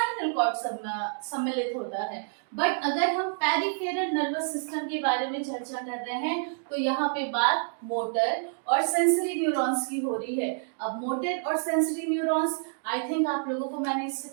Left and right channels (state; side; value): silent; left; digital silence